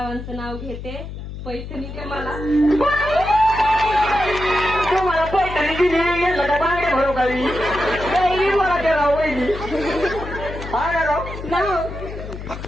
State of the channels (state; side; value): noise; left; hum, 10 dB below the sound